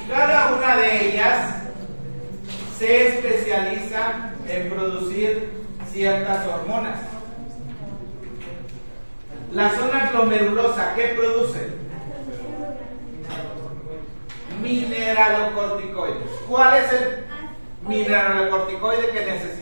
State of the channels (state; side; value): inverted; both; correlation -1.00